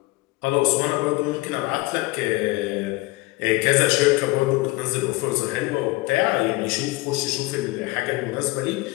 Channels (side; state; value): right; quieter; 21.3 dB